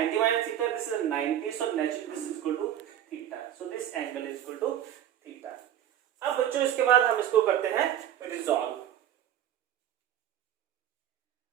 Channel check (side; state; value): left; quieter; 10.8 dB